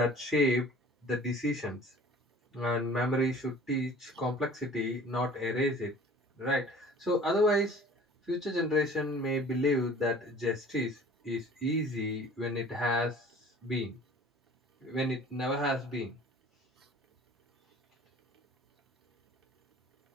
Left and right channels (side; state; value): both; normal; correlation 0.47